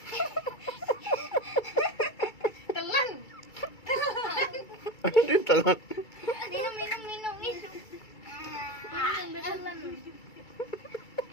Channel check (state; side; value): late; right; 2.3 ms